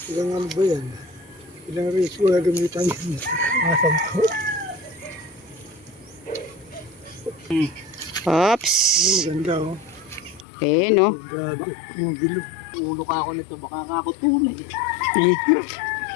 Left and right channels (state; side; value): drops out; right; at 10.5 s